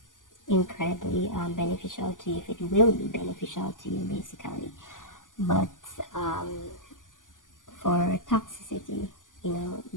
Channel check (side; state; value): right; late; 0.88 ms